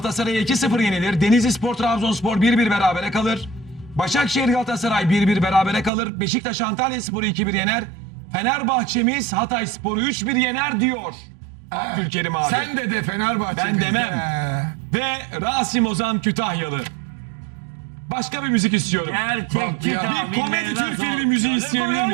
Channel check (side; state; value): left; drops out; at 5.9 s